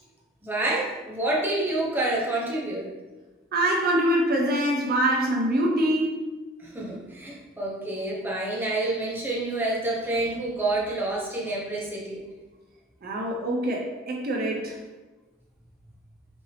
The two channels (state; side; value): normal; both; correlation 0.43